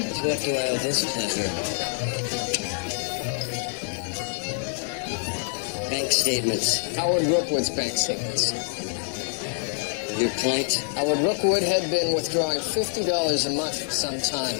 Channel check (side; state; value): right; silent; 61 dB below the other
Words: To what do I owe this pleasure? Bank statements. Howard Rookwood's bank statements. Your point? Howard Rookwood had been withdrawing $50 a month for some time.